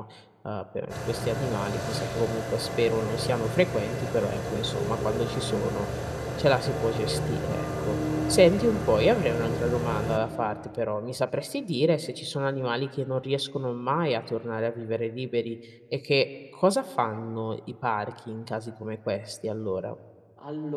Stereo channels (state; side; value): identical; both; correlation 1.00